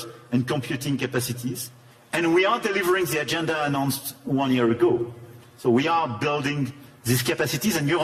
and computing capacities. And we are delivering the agenda announced 1 year ago. So we are building these capacities, and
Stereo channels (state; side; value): identical; both; correlation 1.00